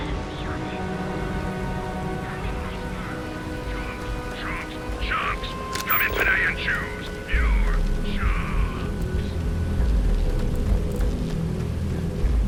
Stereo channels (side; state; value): both; identical; correlation 1.00